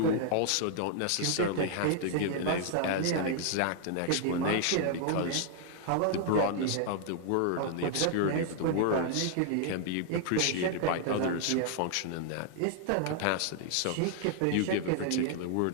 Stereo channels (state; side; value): different; both; correlation 0.00